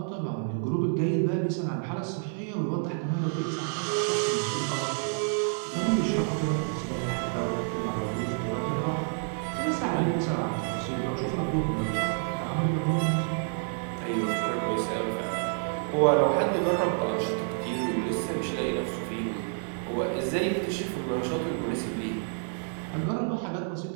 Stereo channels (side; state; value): left; silent; 59 dB below the other